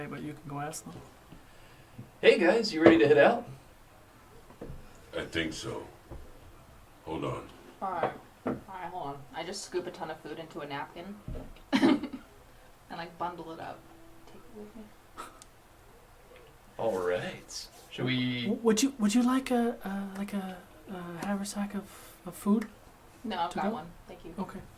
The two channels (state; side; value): identical; both; correlation 1.00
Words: but you can go ask them. Hey guys, you ready to head out? I think so. Hold on. Alright, hold one. I just scoop a ton of food into a napkin and like bundle it up. Take it with me. All right. Should we? Would you like a haversack of food? No, I've To got go? one. Thank you. Okay.